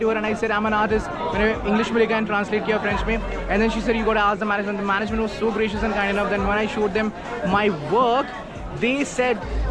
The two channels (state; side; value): identical; both; correlation 1.00